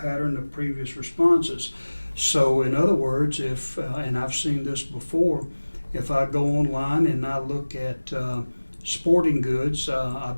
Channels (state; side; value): inverted; both; correlation -1.00